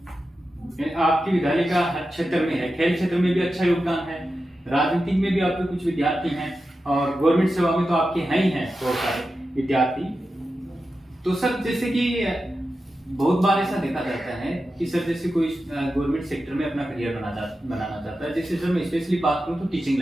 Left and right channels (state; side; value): normal; both; correlation 0.91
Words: आपके विद्यालय का हर क्षेत्र में है, खेल क्षेत्र में भी अच्छा योगदान है, राजनीतिक में भी आपके कुछ विद्यार्थी हैं, और गवर्नमेंट सेवा में तो आपके हैं ही हैं बहुत सारे विद्यार्थी। तो सर जैसे कि बहुत बार ऐसा देखा जाता है कि सर जैसे कोई गवर्नमेंट सेक्टर में अपना करियर बनाना चाहता है, जैसे सर मैं स्पेशली बात करूं तो टीचिंग